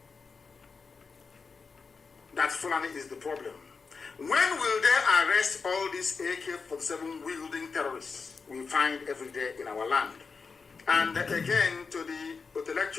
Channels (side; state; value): right; quieter; 4.9 dB